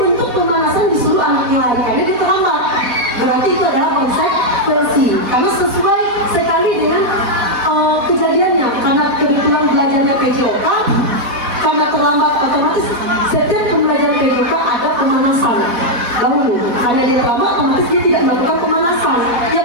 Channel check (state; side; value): late; left; 4.1 ms